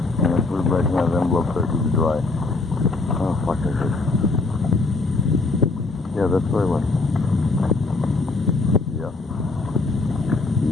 And I put it back in that envelope so it can dry. Oh, fuck, I did. Yeah, that's where I went. Yeah.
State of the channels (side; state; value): right; quieter; 3.5 dB